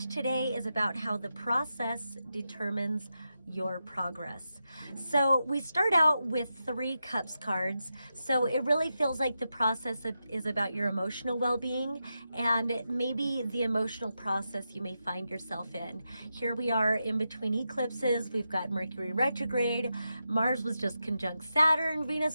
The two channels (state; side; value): inverted; both; correlation -0.88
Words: today is about how the process determines your progress. So we start out with 3 cups cards. So it really feels like the process is about your emotional well-being and maybe the emotional process you may find yourself in. Here we are in between eclipses. We've got Mercury retrograde. Mars was just conjunct Saturn.